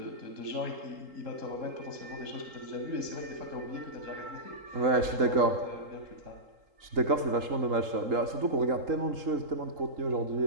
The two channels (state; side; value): late; left; 3.8 ms